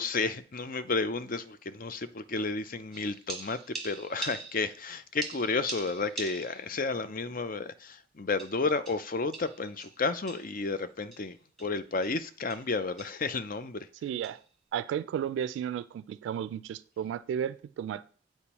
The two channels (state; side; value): normal; both; correlation 0.10